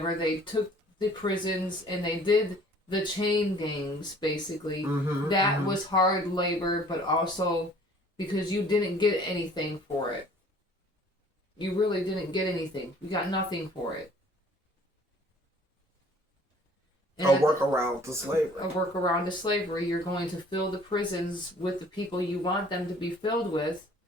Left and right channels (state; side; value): normal; both; correlation 0.53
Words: they took the prisons and they did the chain gangs, basically, that was hard labor, but also because you didn't get anything for it. You really didn't get anything. You got nothing for it. And a workaround to slavery. A workaround to slavery. You're going to fill the prisons with the people you want them to be filled with.